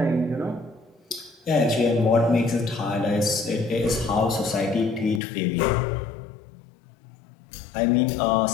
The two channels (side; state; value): right; drops out; at 5.2 s